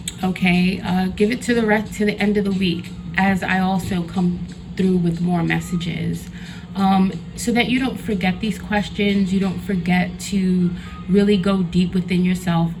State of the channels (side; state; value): both; identical; correlation 1.00